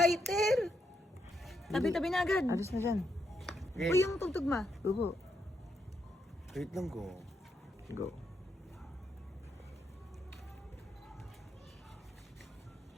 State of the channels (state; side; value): normal; both; correlation 0.80